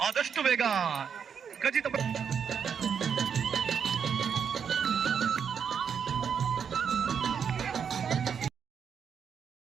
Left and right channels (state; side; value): quieter; left; 7.2 dB